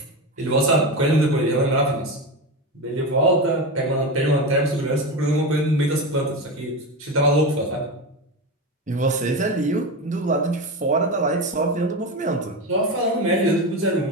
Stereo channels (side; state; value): both; normal; correlation 0.20